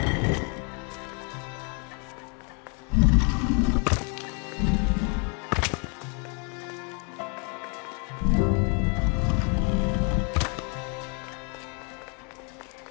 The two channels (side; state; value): right; quieter; 37.0 dB